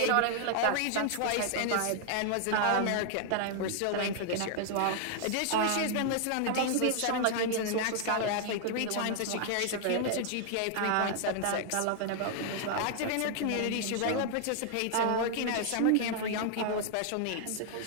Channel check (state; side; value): different; both; correlation 0.00